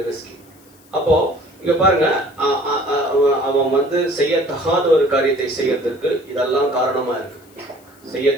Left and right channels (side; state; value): left; noise; hiss, 29 dB below the sound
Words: அப்போ இங்க பாருங்க, அவன் செய்யத்தகாத ஒரு காரியத்தை செய்யறதுக்கு இதெல்லாம் காரணமா இருக்கு.